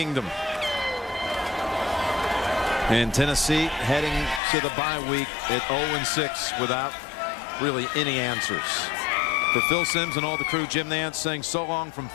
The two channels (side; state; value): right; drops out; at 4.4 s